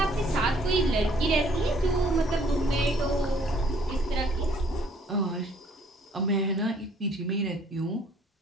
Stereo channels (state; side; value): normal; both; correlation 0.61